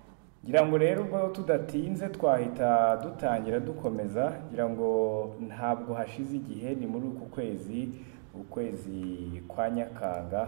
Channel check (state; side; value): silent; left; 57 dB below the other